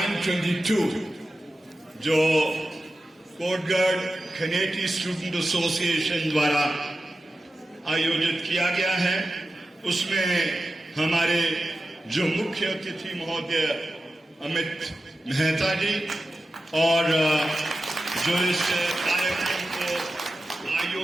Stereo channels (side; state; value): both; normal; correlation 0.93